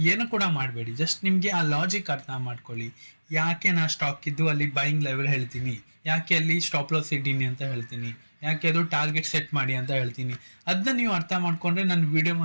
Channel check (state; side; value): inverted; both; correlation -1.00